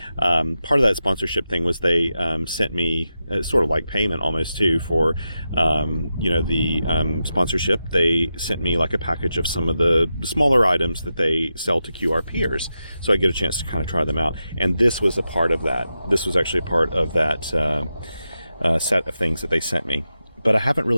part of that sponsorship thing was they sent me sort of like payment almost too for the sponsorship. They sent me like a package of some of the smaller items that they sell to QRPers, so I get a chance to kind of try them out. And this was a part of that. This was actually a part of that set of things that they sent me. But I haven't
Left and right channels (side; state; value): both; inverted; correlation -0.90